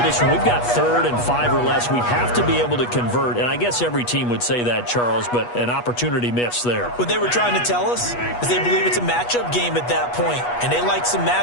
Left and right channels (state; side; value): late; right; 8.3 ms